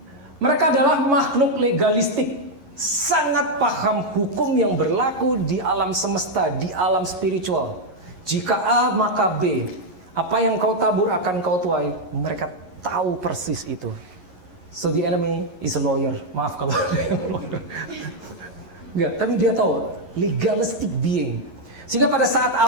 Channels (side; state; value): left; late; 11 ms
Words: Mereka adalah makhluk legalistik. Sangat paham hukum yang berlaku di alam semesta, di alam spiritual. Jika A maka B. Apa yang kau tabur akan kau tuai. Mereka tahu persis itu. So the enemy is a lawyer. Maaf kalau ada yang lawyer. Enggak, tapi dia tahu legalistic being. Sehingga pada saat